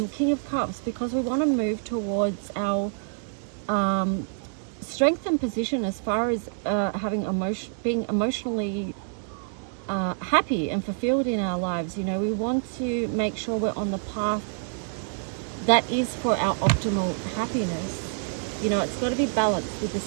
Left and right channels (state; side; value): silent; left; digital silence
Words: King of Cups, because we want to move towards our strength and position as far as being emotionally happy and fulfilled in our lives. You know, we want to make sure we're on the path that is for our optimal happiness. You know, it's got to be balanced with the